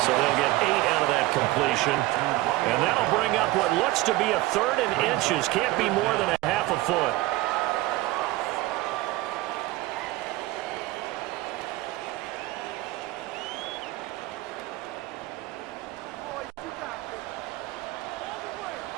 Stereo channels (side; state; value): left; quieter; 18.3 dB